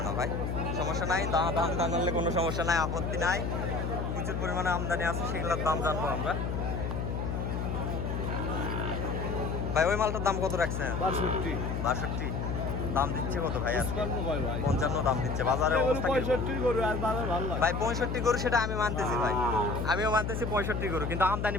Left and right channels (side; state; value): left; noise; hum, 2 dB below the sound